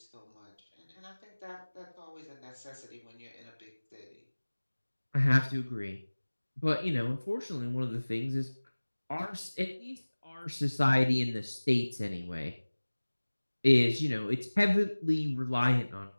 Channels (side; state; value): both; inverted; correlation -1.00